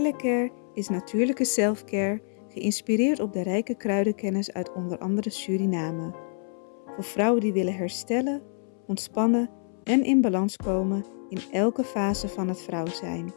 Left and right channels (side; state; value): right; silent; 60 dB below the other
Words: is natuurlijke selfcare, geïnspireerd op de rijke kruidenkennis uit onder andere Suriname. Voor vrouwen die willen herstellen, ontspannen en in balans komen in elke fase van het vrouw zijn.